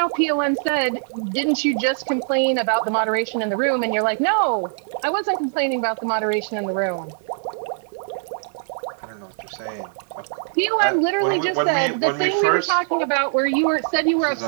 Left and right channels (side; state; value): left; silent; digital silence